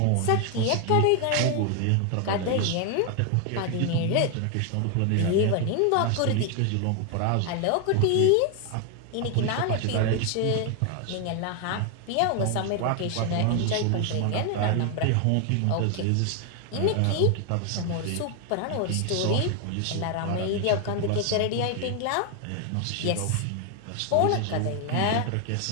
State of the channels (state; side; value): different; both; correlation 0.00